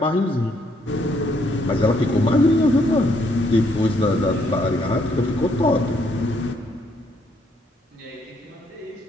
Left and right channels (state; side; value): normal; both; correlation 0.70